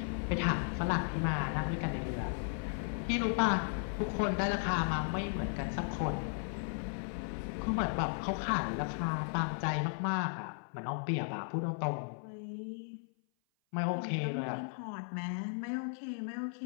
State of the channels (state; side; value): silent; right; 54 dB below the other